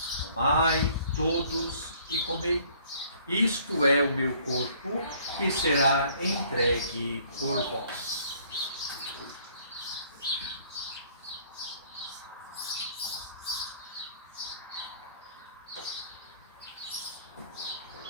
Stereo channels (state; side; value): inverted; both; correlation -0.59